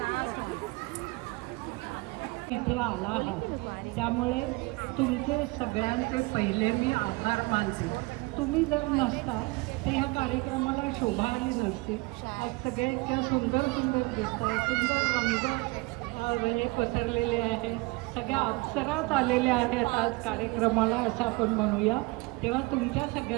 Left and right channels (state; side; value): quieter; left; 24.8 dB